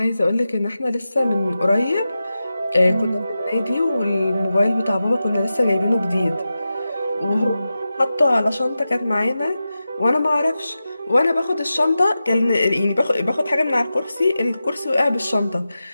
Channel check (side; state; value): both; inverted; correlation -0.93